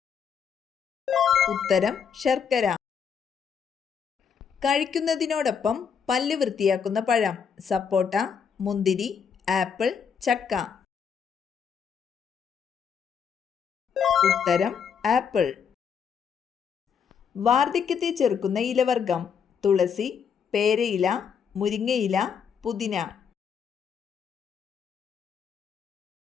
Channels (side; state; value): right; quieter; 6.9 dB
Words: ഉത്തരം ശർക്കര. കഴിക്കുന്നതിനോടൊപ്പം പല്ല് വൃത്തിയാക്കുന്ന പഴം: സപ്പോട്ട, മുന്തിരി, ആപ്പിൾ, ചക്ക. ഉത്തരം ആപ്പിൾ. വാർദ്ധക്യത്തെ ചെറുക്കുന്ന ഇലവർഗം: തുളസി, പേരയില, മുരിങ്ങയില, പുതിന.